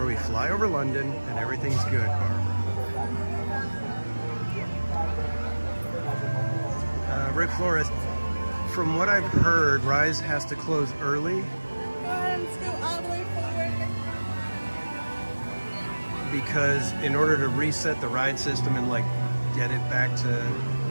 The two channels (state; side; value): inverted; both; correlation -1.00